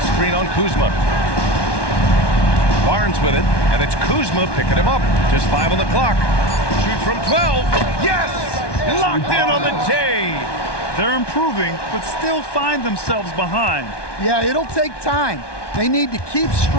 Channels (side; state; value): right; late; 1.2 ms